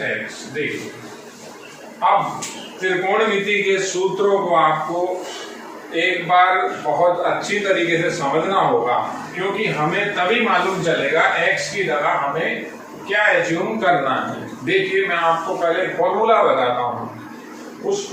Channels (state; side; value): identical; both; correlation 1.00